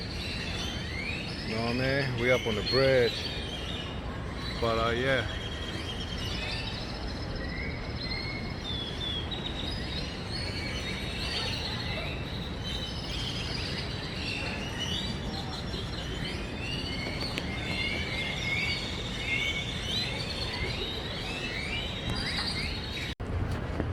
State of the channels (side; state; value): both; identical; correlation 1.00